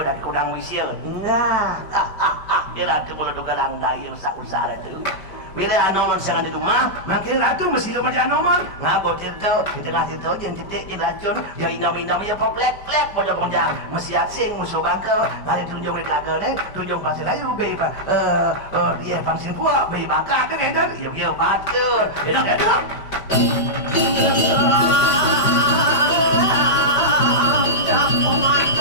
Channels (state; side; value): late; right; 5.1 ms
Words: kunang wisya. Nah, kira tu kalau dogalang daya usaha itu. Bila anoman sangat di rumah, makin ratu mesti rumah di anoman. Ngabo tirta, di tengah tirta jen titik jen racun, ya inam-inam ya plek-plek pojok-pojok. Mesti asing musuh bangka, kali tunjuk mereka agak tunjuk pasir layu, beba, dia pangsin kuat, beba kakak edan, yuk batur, edan.